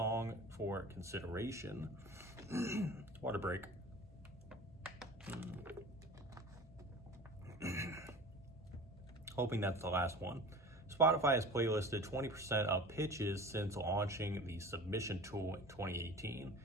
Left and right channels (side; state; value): both; normal; correlation 0.39